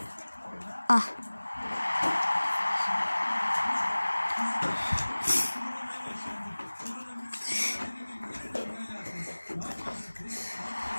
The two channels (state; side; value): inverted; both; correlation -1.00